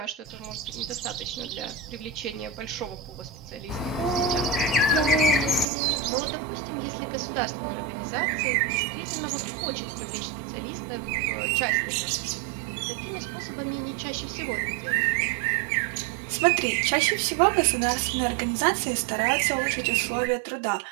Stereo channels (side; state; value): left; drops out; at 5.7 s